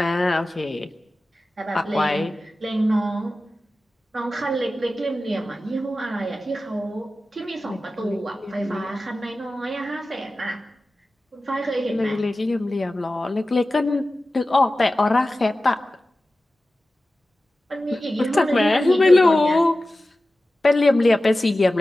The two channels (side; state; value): both; normal; correlation 0.95